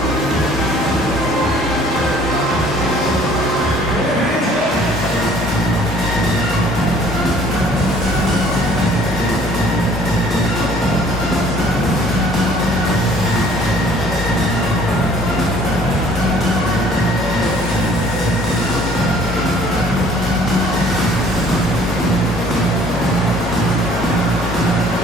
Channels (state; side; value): normal; both; correlation 0.55